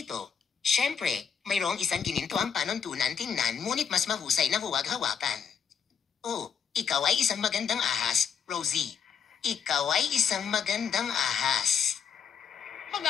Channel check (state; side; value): quieter; right; 7.3 dB